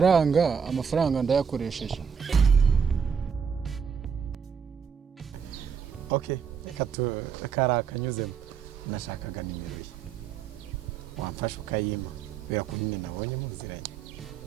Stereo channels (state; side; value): quieter; left; 6.7 dB